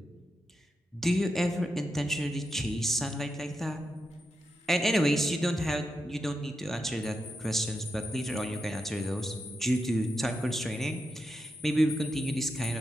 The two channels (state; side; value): normal; both; correlation 0.86